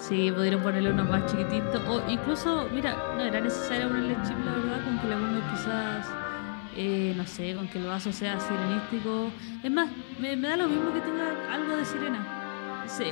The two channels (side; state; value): right; silent; digital silence